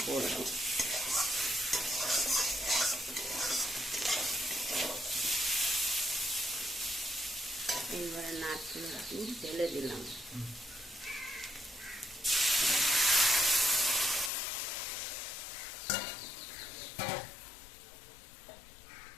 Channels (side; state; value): right; drops out; at 14.3 s